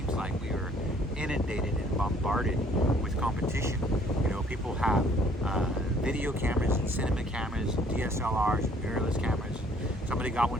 like we are inundated and bombarded with competition. You know, people have video cameras and cinema cameras and DSLRs and mirrorless cameras. Somebody got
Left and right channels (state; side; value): normal; both; correlation 0.60